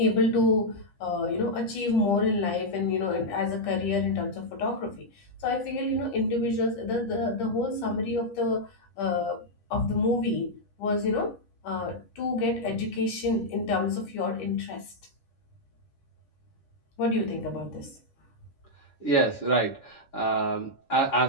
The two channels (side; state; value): right; late; 10 ms